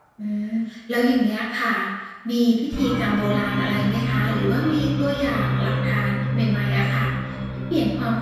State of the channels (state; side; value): identical; both; correlation 1.00